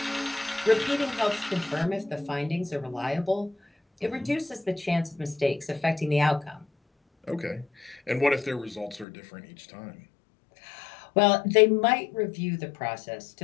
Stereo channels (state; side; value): drops out; right; at 9.1 s